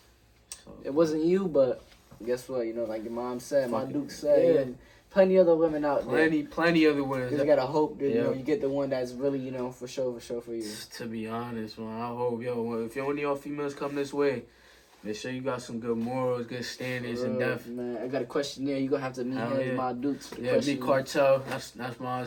it wasn't you, but guess what? You know, like your mom said, my Duke said, plenty other women out there. Plenty other women. You gotta hope that you know you get the one that's really, you know, for sure for you. To be honest, man, I hope if any of y'all females come this way, make sure you got some good morals, good standards, and depth. Man, I got a questionnaire. You gonna have to meet him, my Dukes. Meet Cartel. That's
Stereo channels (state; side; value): identical; both; correlation 1.00